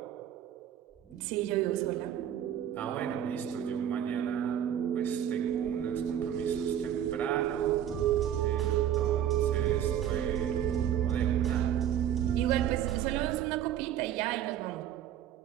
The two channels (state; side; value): quieter; left; 10.5 dB